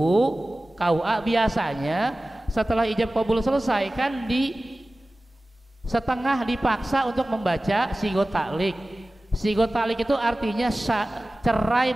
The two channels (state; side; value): normal; both; correlation 0.97